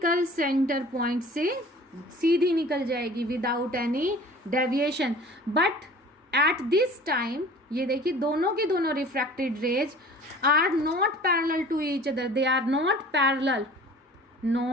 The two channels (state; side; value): normal; both; correlation 0.45